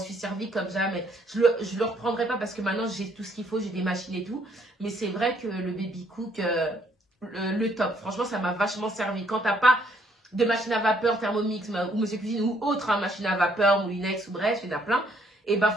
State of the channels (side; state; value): both; normal; correlation 0.67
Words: servi comme jamais. Je le reprendrai pas parce que maintenant j'ai tout ce qu'il faut, j'ai des machines et tout. Mais c'est vrai que le Baby Cook, le top. Franchement, ça m'a vachement servi. Quand t'as pas de machine à vapeur, Thermomix ou Monsieur Cuisine ou autre, hein, machine à vapeur, Moulinex ou bref, il y en a plein. Et ben